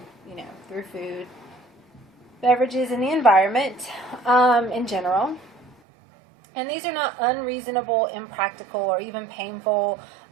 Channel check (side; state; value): left; drops out; at 5.8 s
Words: through food, beverages, and the environment in general. And these are not unreasonable, impractical, or even painful